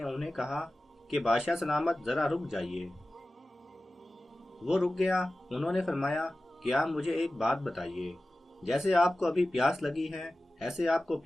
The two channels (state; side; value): normal; both; correlation 0.96